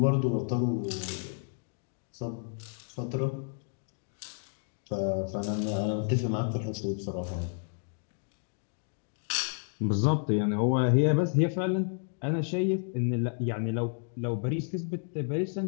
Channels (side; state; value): right; silent; digital silence